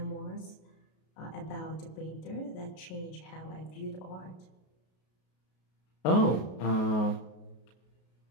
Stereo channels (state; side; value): late; right; 33 ms